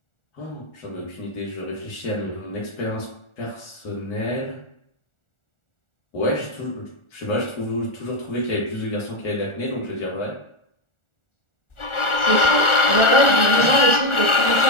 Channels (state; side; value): late; right; 1.4 ms